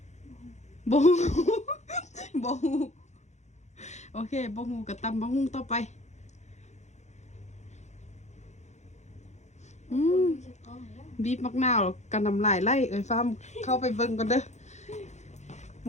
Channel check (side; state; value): right; late; 0.33 ms